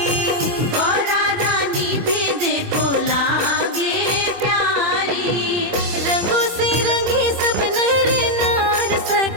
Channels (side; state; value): left; late; 25 ms